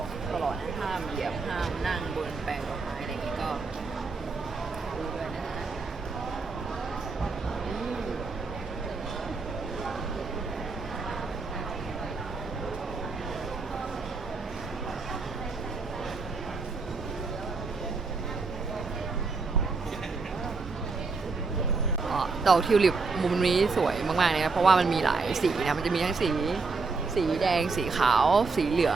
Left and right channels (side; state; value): left; quieter; 4.2 dB